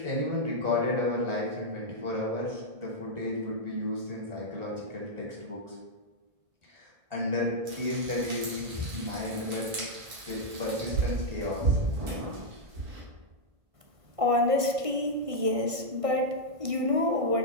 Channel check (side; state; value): left; late; 1.5 ms